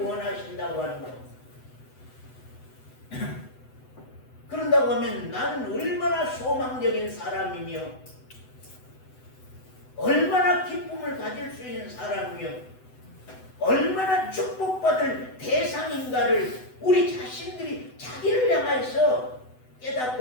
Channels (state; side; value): late; right; 7.9 ms